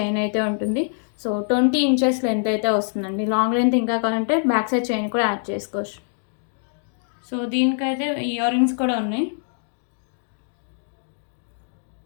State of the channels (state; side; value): silent; right; digital silence